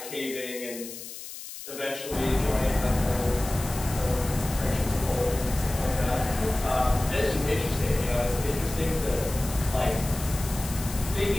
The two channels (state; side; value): noise; left; hiss, 11 dB below the sound